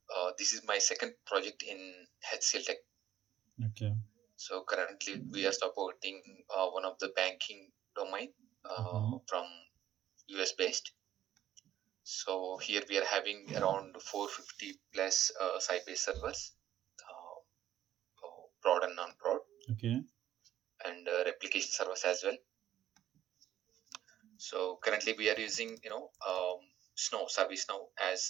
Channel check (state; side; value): quieter; left; 11.8 dB